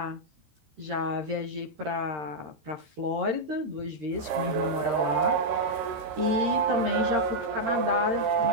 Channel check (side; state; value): left; late; 13 ms